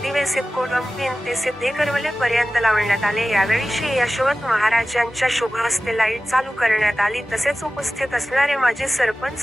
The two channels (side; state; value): both; normal; correlation 0.96